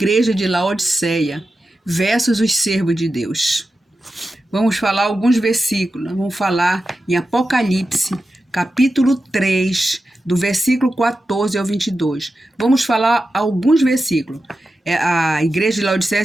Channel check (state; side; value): normal; both; correlation 0.92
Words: de Laodiceia versus os servos de Deus. Vamos falar alguns versículos, vamos falar em Apocalipse, capítulo 3, do versículo 14 ao 22. Vamos falar alguns versículos. A igreja de Laodiceia